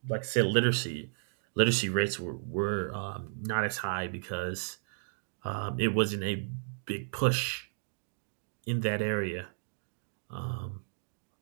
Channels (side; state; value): left; silent; digital silence